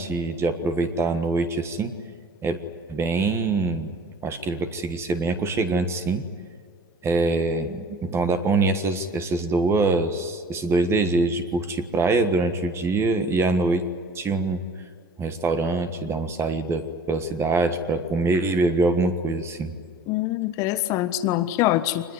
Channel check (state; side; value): normal; both; correlation 0.46